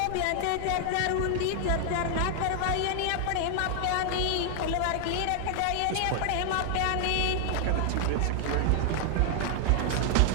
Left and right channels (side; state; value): both; different; correlation 0.00